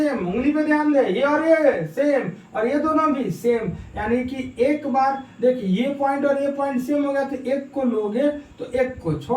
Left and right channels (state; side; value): identical; both; correlation 1.00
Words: उंगली पे ध्यान दे, ये और ये सेम और ये दोनों भी सेम, यानी कि एक बार देख ये पॉइंट और ये पॉइंट सेम हो गया तो एक को लोगे तो एक को